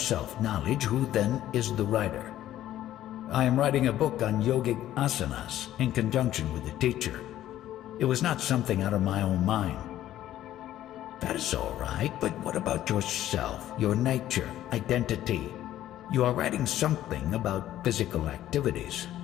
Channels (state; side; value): quieter; right; 13.0 dB